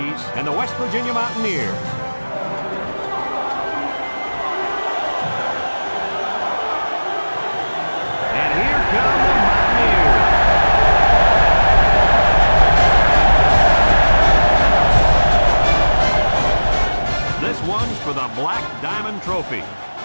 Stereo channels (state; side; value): inverted; both; correlation -1.00